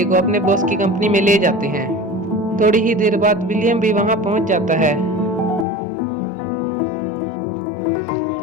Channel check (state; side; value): drops out; right; at 5.7 s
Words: को अपने बॉस की कंपनी में ले जाते हैं। थोड़ी ही देर बाद विलियम भी वहां पहुंच जाता है।